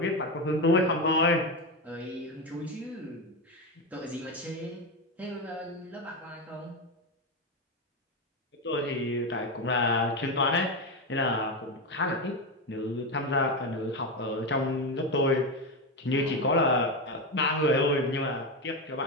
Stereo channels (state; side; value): normal; both; correlation 0.13